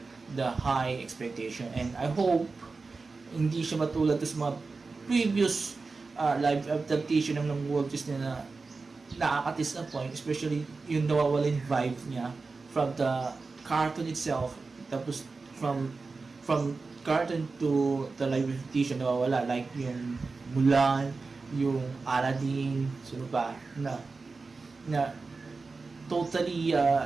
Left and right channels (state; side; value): quieter; left; 4.1 dB